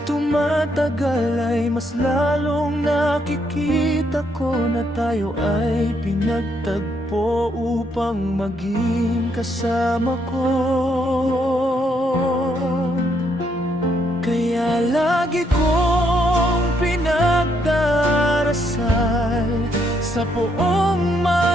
tumatagal ay mas lalong nakikita ko na tayo ay pinagtagpo upang maging kasama ko. Kaya lagi kong pinagdarasal sa poong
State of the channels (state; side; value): normal; both; correlation 0.74